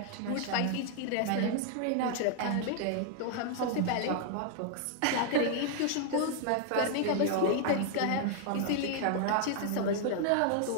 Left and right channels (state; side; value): different; both; correlation 0.00